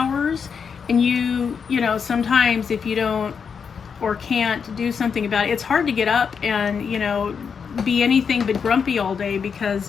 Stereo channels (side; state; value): right; quieter; 6.3 dB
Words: And you know, sometimes if you don't or can't do something about it, it's hard to get up and, you know, be anything but grumpy all day